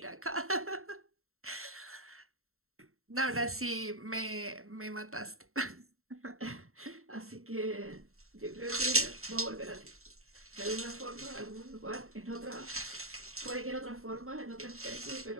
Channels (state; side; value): late; left; 0.63 ms